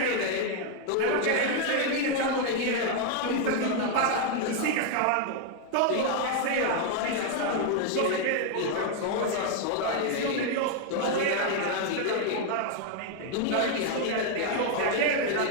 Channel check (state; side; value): different; both; correlation 0.00